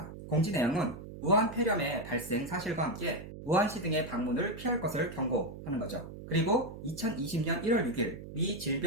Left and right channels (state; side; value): noise; right; hum, 12 dB below the sound